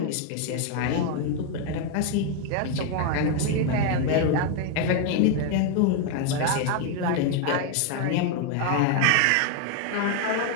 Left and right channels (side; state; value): both; different; correlation 0.01